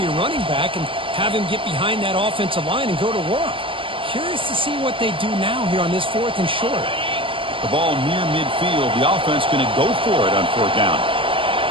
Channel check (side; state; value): left; late; 0.25 ms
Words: your running back and have him get behind that offensive line and go to work. Curious to see what they do now here on this 4th and short. The ball near midfield. The offense going to go for it on 4th down.